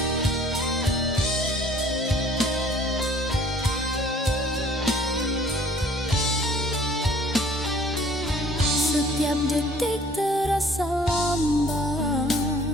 Setiap detik terasa lambat,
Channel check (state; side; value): normal; both; correlation 0.55